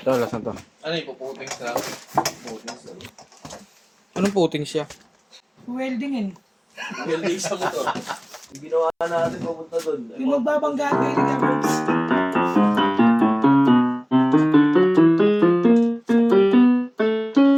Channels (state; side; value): identical; both; correlation 1.00